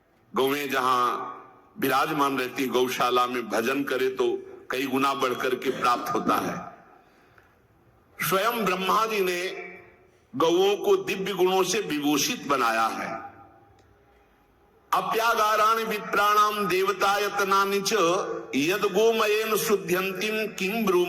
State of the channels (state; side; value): identical; both; correlation 1.00